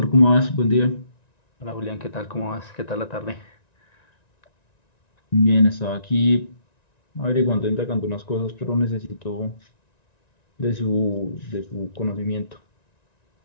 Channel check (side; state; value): right; late; 1.9 ms